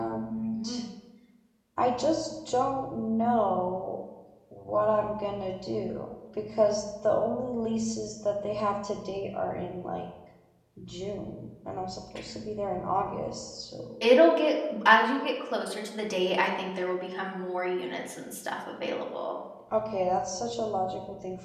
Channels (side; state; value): both; identical; correlation 1.00